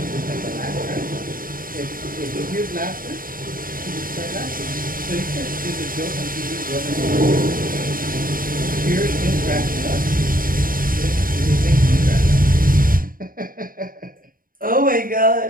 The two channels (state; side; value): late; left; 0.41 ms